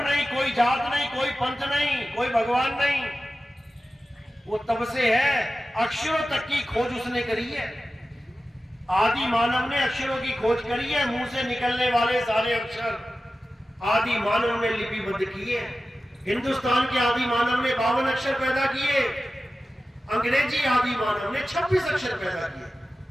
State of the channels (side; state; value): both; normal; correlation 0.94